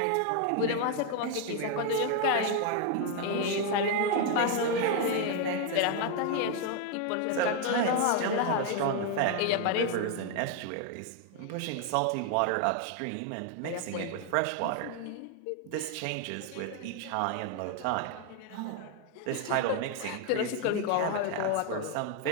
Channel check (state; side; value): different; both; correlation 0.01